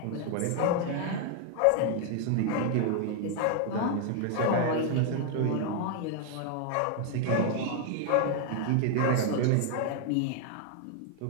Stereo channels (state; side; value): different; both; correlation 0.00